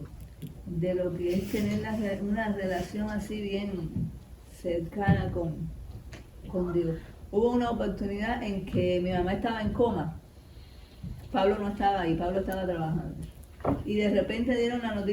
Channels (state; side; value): identical; both; correlation 1.00